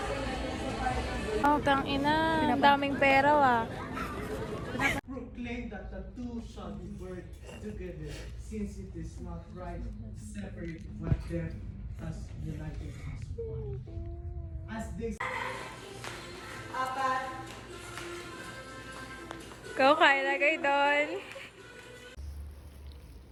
Oh, tang ina. Ang daming pera, ah. Proclaim that the two shall be burned together, since it is not right to separate what them as united as one. As they Go, kain na kayo doon.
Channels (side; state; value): both; identical; correlation 1.00